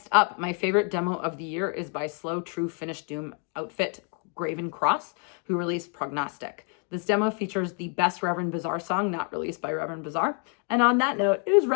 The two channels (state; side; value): quieter; right; 38.9 dB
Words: up, my favorite demo of the year is by slow, true Finnish doom outfit Graven Cross, who released Prognostic. This demo features the best Reverend Bizarre song not released by Reverend Bizarre. And on that note, it is